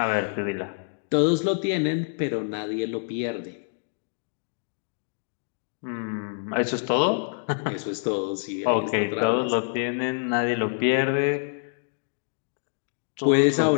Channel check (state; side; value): silent; right; digital silence